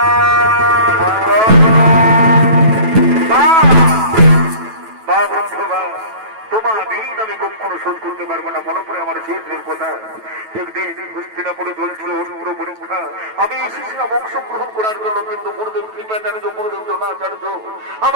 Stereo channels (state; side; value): late; left; 9.1 ms